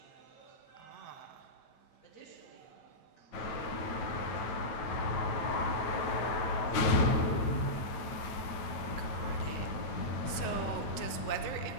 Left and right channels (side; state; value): right; late; 9.1 ms